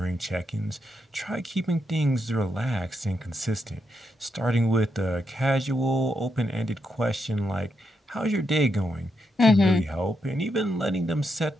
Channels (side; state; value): both; normal; correlation 0.82